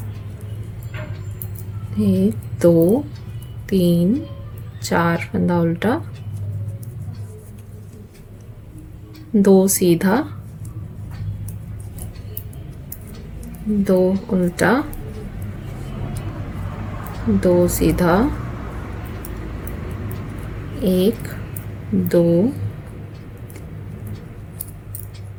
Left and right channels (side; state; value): both; identical; correlation 1.00